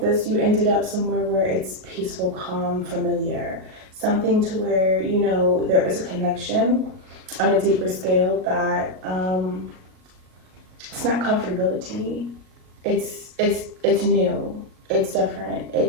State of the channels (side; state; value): left; late; 38 ms